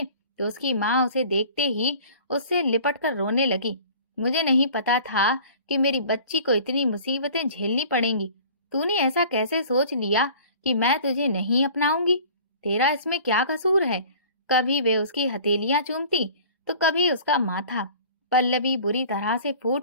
तो उसकी माँ उसे देखते ही उससे लिपट कर रोने लगी। मुझे नहीं पता था कि मेरी बच्ची को इतनी मुसीबतें झेलनी पड़ेंगी। तूने ऐसा कैसे सोच लिया कि मैं तुझे नहीं अपनाऊंगी? तेरा इसमें क्या कसूर है? कभी वे उसकी हथेलियां चूमती तो कभी उसका माथा। पल्लवी बुरी तरह से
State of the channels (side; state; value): both; inverted; correlation -0.46